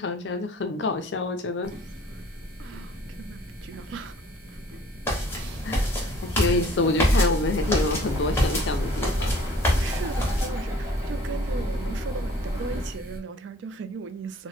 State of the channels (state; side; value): normal; both; correlation 0.54